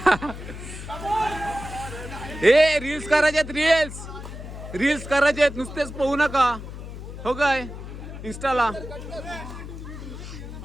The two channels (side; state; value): left; noise; hum, 10 dB below the sound